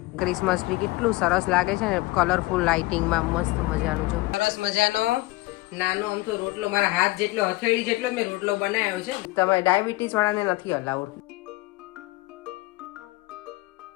ક્રિસમસ ટ્રી કેટલું સરસ લાગે છે ને કલરફુલ લાઇટિંગમાં મસ્ત મજાનું જો સરસ મજાનો નાનો અમથો રોટલો મારા હાથ જેટલો હથેળી જેટલો મેં રોટલો બનાવ્યો છે. તમે ડાયાબિટીસ વાળાને નથી અલાઉડ.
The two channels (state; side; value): quieter; right; 21.1 dB